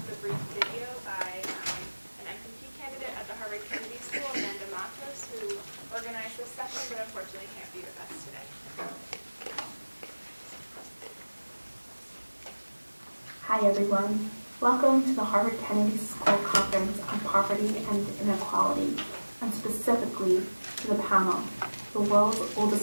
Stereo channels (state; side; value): inverted; both; correlation -1.00